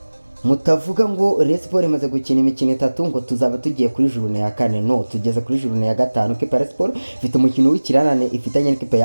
mutavuga ngo Rayon Sport imaze gukina imikino 3 ngo tuzaba tugiye kuri journée ya 4. No, tugeze kuri journée ya 5. Rayon Sport ifite umukino w'ikirarane ifitanye n'ikipe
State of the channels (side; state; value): both; inverted; correlation -1.00